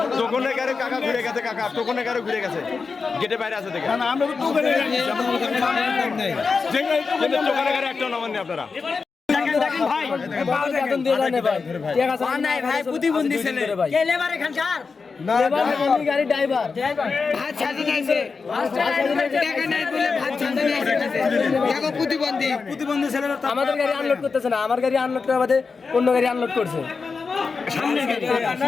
টোকনে গাড়ি কাকা ঘুরে গেছে কাকা টোকনে গাড়ি ঘুরে গেছে গেটে বাইরে আছে দেখেন না আমরা তো টোকেনে গেছি যে গাড়ি কিন্তু টোকনে গাড়ি একটা নামান নেই আপনারা দেখেন ভাই বেতন দিয়ে জানে ভাই ঠিক আছে নাই ভাই প্রতিবন্ধী ছেলে কে লেবার এখানকার লেবার মানে গাড়ি ড্রাইভার ভাত ছাড়ি নাইছে টাকা নাই বলে ভাত ছাড়তে নাইছে দেখো প্রতিবন্ধী ছেলেরা আমাদের গাড়ি আনলোড করতেছে না আমার গাড়ি আনলোড করা বাদে অন্য গাড়ি আনলোড করছে সামনে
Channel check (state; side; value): quieter; right; 4.8 dB